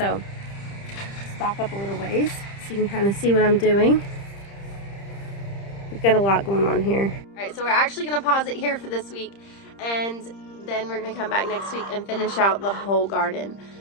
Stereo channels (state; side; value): late; right; 30 ms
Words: let's back up a little ways so you can kind of see what I'm doing. We've got a lot going on here. All right, so we're actually gonna pause it here for this week, and then we're gonna come back next week and finish out the whole garden.